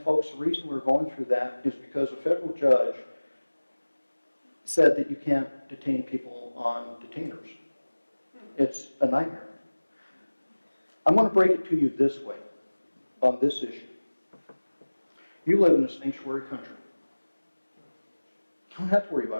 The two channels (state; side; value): inverted; both; correlation -1.00